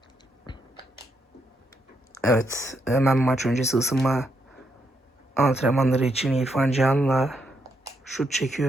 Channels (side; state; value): both; normal; correlation 0.78